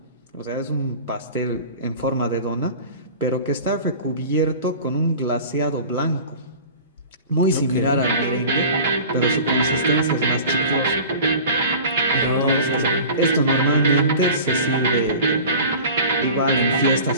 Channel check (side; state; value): both; inverted; correlation -0.39